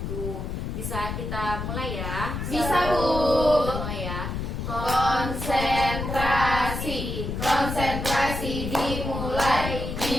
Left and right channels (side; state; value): left; noise; rumble, 4 dB below the sound